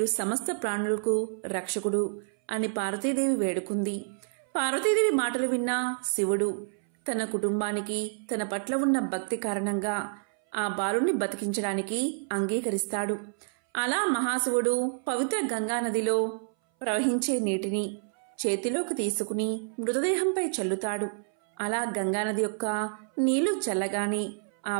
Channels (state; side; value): silent; left; 59 dB below the other